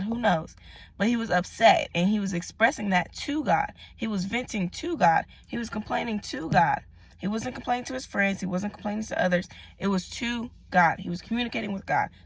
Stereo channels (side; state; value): both; identical; correlation 1.00